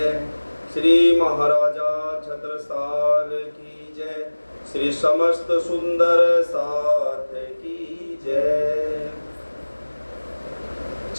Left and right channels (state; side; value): inverted; both; correlation -1.00